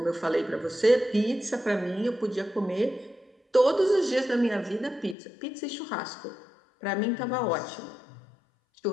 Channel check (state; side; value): drops out; right; at 5.2 s